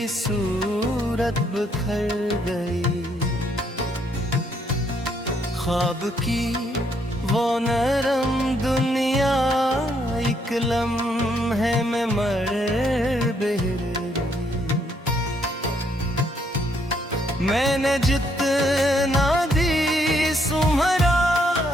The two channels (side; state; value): both; normal; correlation 0.72